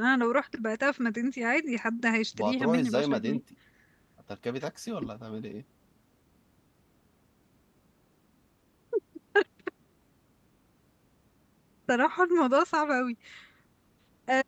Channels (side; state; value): both; identical; correlation 1.00